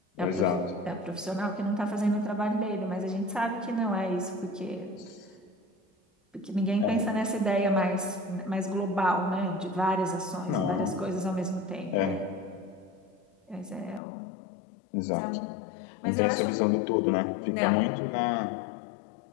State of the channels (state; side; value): drops out; right; at 14.0 s